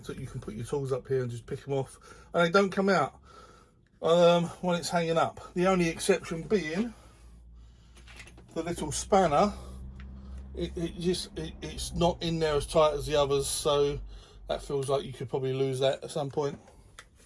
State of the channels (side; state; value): both; identical; correlation 1.00